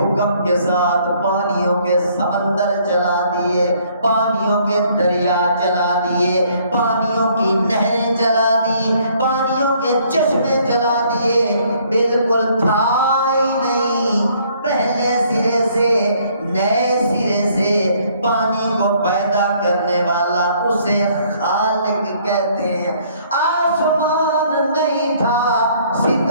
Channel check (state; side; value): inverted; both; correlation -0.63